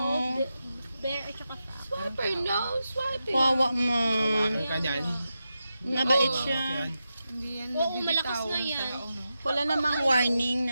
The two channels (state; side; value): inverted; both; correlation -0.90